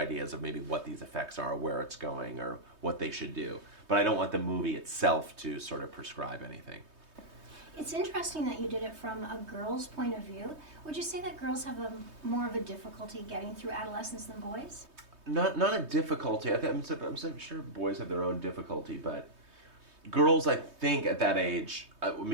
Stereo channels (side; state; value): left; late; 3.2 ms